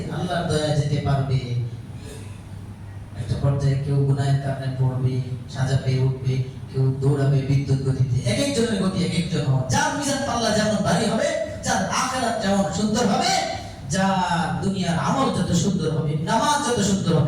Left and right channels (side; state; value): both; identical; correlation 1.00